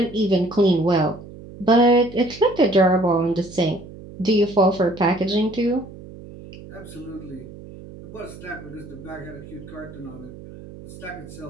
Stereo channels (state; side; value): noise; right; hum, 16 dB below the sound